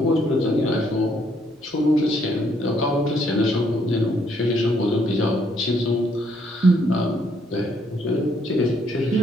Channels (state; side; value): normal; both; correlation 0.70